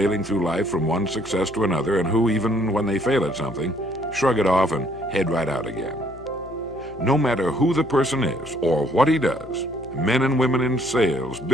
through life from one success to another, and who, even when they fail at something, shrug it off and head right out again. No matter who the person is or what he does, men and women in sales,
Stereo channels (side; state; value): left; noise; hum, 19 dB below the sound